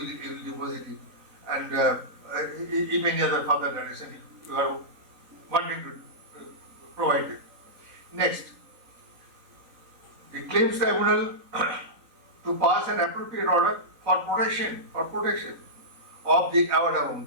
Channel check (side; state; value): left; late; 3.9 ms